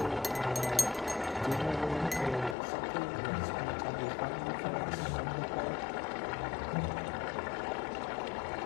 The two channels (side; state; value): right; drops out; at 2.6 s